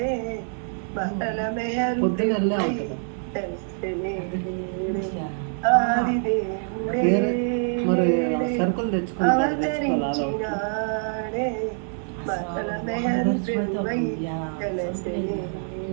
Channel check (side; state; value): left; silent; 62 dB below the other